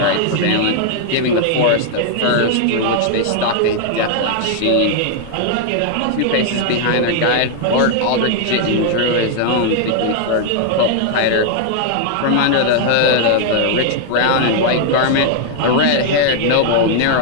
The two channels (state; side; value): different; both; correlation 0.00